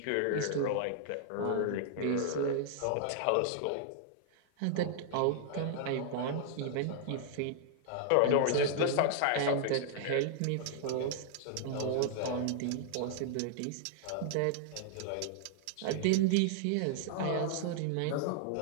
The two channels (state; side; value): different; both; correlation -0.01